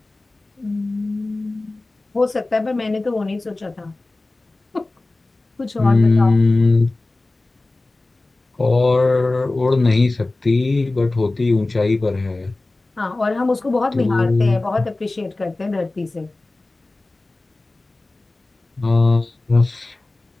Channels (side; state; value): right; quieter; 3.0 dB